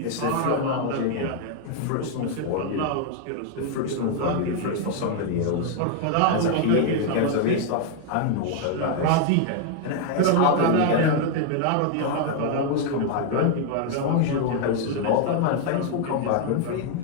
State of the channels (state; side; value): different; both; correlation 0.00